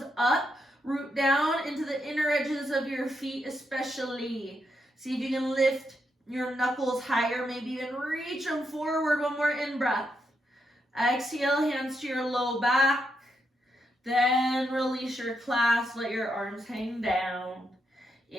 up, root down into the inner edges of your feet especially. See if you can lift your knuckles higher, maybe even reach them forward. 1 more in-breath. Exhale, hands to your low back. Then release your clasp, let your arms hang down.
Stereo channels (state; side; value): normal; both; correlation 0.81